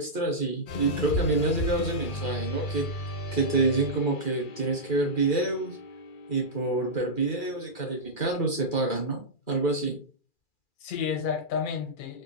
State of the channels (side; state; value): right; late; 2.4 ms